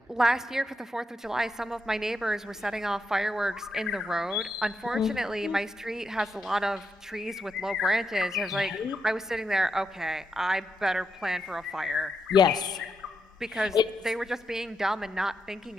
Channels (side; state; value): both; normal; correlation 0.83